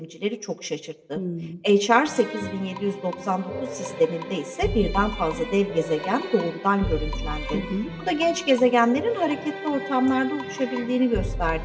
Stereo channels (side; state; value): both; identical; correlation 1.00